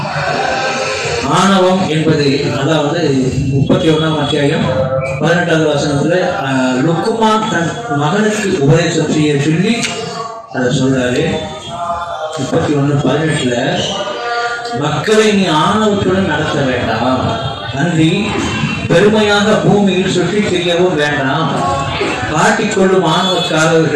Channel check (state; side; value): identical; both; correlation 1.00